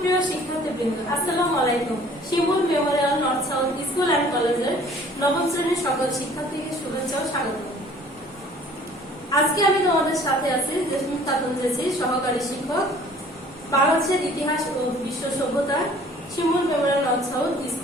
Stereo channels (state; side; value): normal; both; correlation 0.53